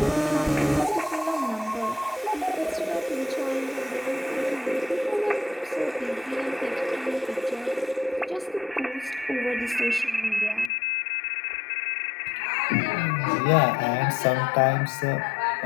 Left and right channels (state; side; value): drops out; right; at 10.7 s